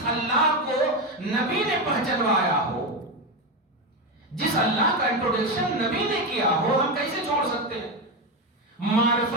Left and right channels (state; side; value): normal; both; correlation 0.13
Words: اللہ کو نبی نے پہچنوایا ہو، جس اللہ کا انٹروڈکشن نبی نے کیا ہو، ہم کیسے چھوڑ سکتے ہیں؟